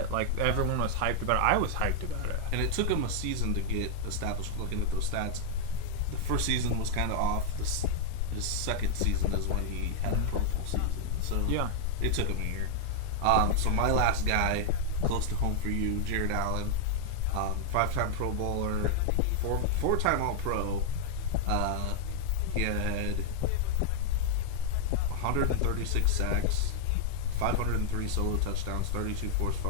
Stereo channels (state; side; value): different; both; correlation 0.00